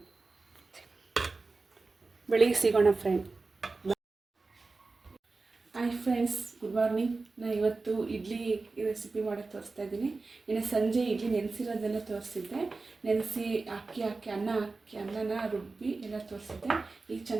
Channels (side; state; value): left; quieter; 3.8 dB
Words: ಬೆಳಿಗ್ಗೆ ಸಿಗೋಣ friend. Hi friends, good morning. ನಾನು ಇವತ್ತು ಇಡ್ಲಿ ರೆಸಿಪಿ ಮಾಡೋಕ್ಕೆ ತೋರಿಸ್ತಾ ಇದ್ದೀನಿ. ಇನ್ನು ಸಂಜೆ ಇಡ್ಲಿ ನೆನೆಸಿರೋದೆಲ್ಲ ತೋರಿಸಿದ್ದೆ. ನೆನೆಸಿ ಅಕ್ಕಿ ಅನ್ನನ ರುಬ್ಬಿ ಎಲ್ಲ ತೋರಿಸಿದ್ದೆ. ಈಗ